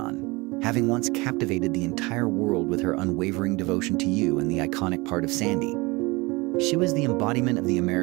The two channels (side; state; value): left; quieter; 24.4 dB